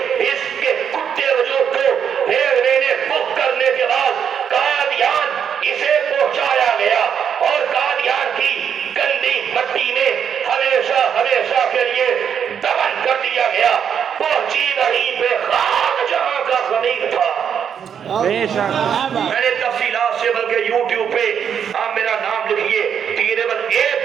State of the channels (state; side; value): quieter; left; 8.0 dB